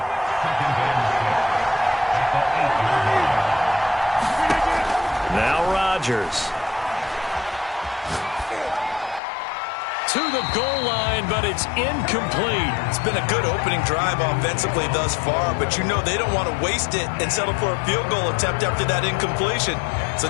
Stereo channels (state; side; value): drops out; right; at 9.2 s